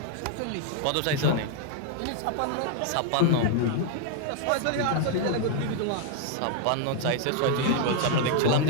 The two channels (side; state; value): both; different; correlation 0.00